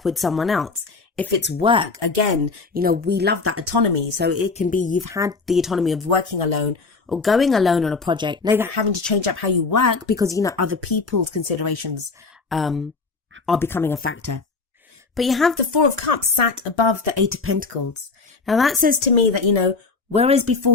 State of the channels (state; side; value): quieter; right; 4.2 dB